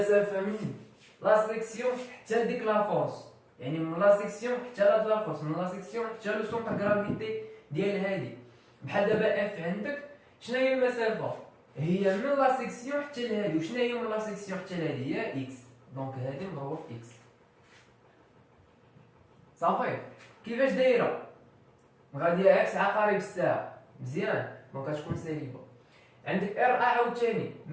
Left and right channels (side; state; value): both; identical; correlation 1.00